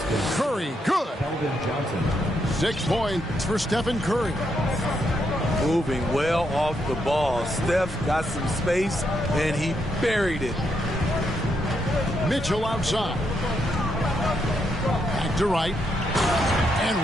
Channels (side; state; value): both; normal; correlation 0.79